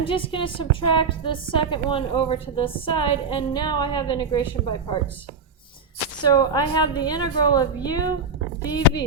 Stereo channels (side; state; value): left; quieter; 4.3 dB